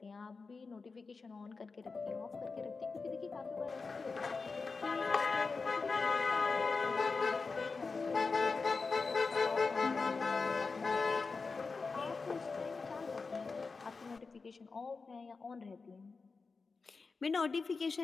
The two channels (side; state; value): right; quieter; 4.4 dB